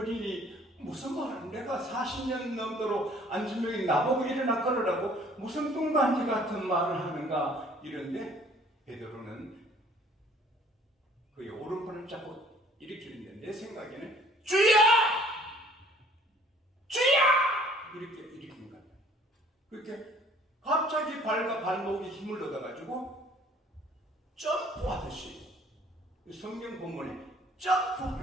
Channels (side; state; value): both; normal; correlation 0.56